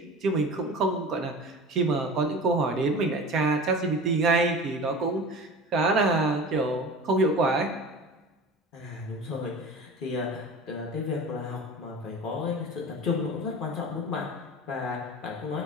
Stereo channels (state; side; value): normal; both; correlation 0.35